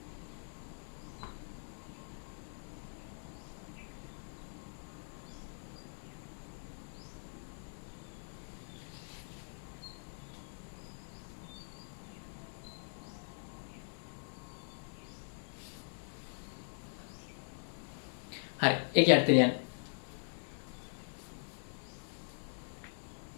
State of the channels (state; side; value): silent; right; digital silence